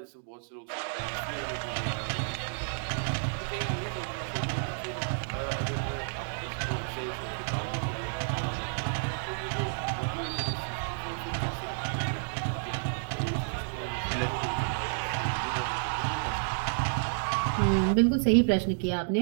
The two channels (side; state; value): left; silent; digital silence